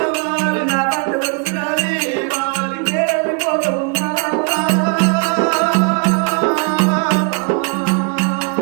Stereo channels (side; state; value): left; quieter; 35.2 dB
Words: నా పంట వలసినాది నేను వెళ్ళిపోతా ఉన్నా